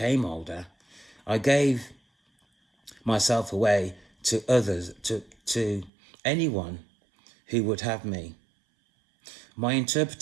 older, I gave myself away to others, to anyone who would have me. My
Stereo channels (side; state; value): left; drops out; at 5.9 s